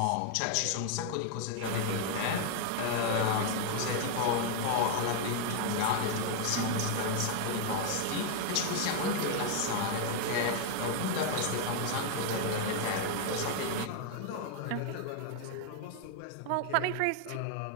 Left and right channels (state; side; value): different; both; correlation 0.00